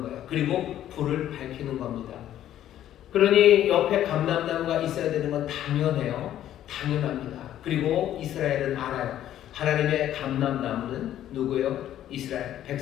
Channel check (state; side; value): quieter; right; 11.9 dB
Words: 거예요. 그리고 불을 밝히는 겁니다. 그러니 옆에 감람나무가 있어야 되는 건 당연해요. 당연합니다. 그리고 이스라엘은 알아요. 하나님의 감람나무는 누구예요? 이스라엘